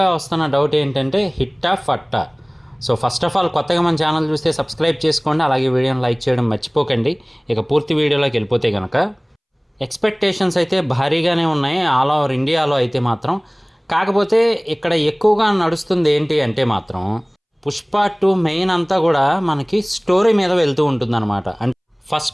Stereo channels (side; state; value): both; identical; correlation 1.00